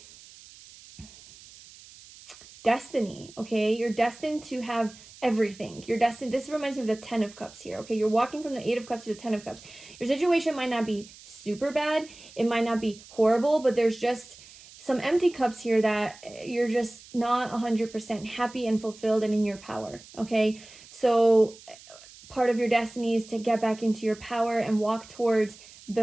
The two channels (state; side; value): noise; right; hiss, 20 dB below the sound